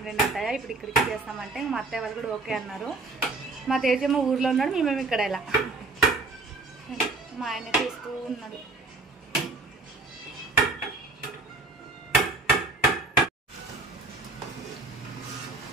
అత్తయ్య, ఇప్పుడు ఇక్కడికి చేస్తామంటే మా అత్తయ్య వాళ్ళు కూడా ఓకే అన్నారు. మా తేజేమో ఊర్లో ఉన్నాడు, మేమేమి ఇక్కడ ఎలా. మా ఆయన చూస్తూ ఉన్నాడు.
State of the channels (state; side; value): quieter; left; 3.3 dB